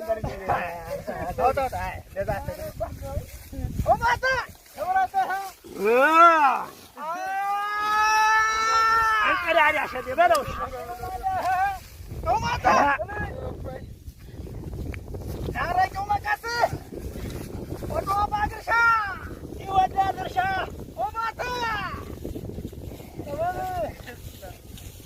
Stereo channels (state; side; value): identical; both; correlation 1.00